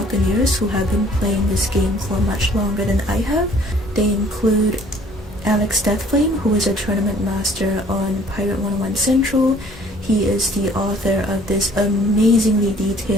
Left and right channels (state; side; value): normal; both; correlation 0.56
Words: who have been playing this game for much longer than I have. They include Alex Deathflame, who is a tournament master on Pirate101 Central. He is the author of this amazingly